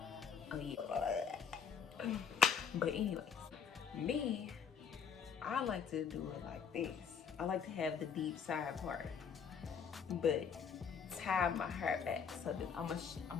Oh yeah. But anyways, me, I like to do it like this. I like to have the deep side part, but tie my hair back. So that I'm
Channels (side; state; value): right; quieter; 6.8 dB